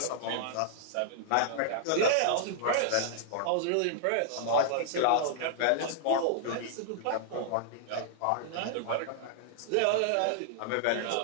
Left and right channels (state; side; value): different; both; correlation -0.01